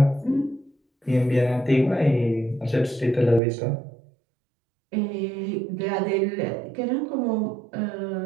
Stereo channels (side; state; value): left; drops out; at 3.4 s